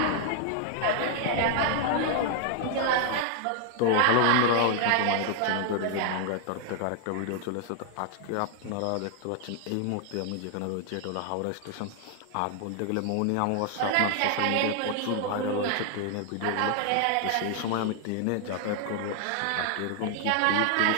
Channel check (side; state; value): both; different; correlation 0.00